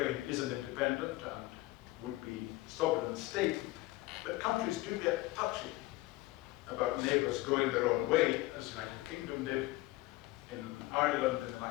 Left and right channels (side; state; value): right; quieter; 19.3 dB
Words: is an independent and would be sovereign state, but countries do get touchy about neighbours going their own way, as the United Kingdom did in Ireland in the